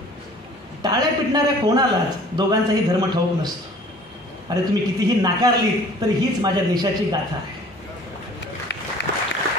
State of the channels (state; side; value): normal; both; correlation 0.49